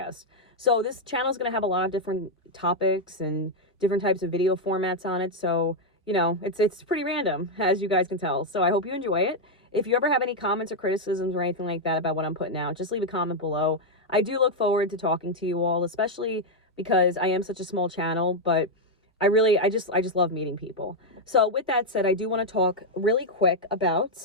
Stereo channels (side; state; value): both; normal; correlation -0.01